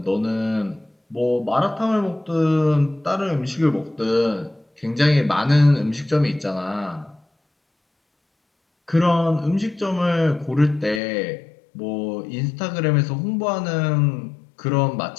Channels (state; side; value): drops out; right; at 11.0 s